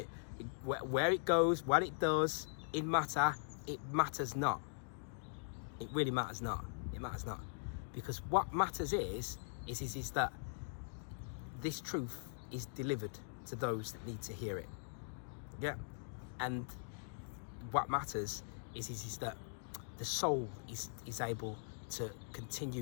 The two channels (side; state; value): right; silent; digital silence